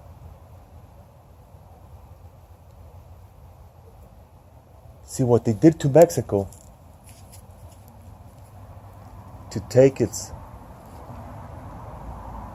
See what they did to Mexico to take its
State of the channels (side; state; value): both; identical; correlation 1.00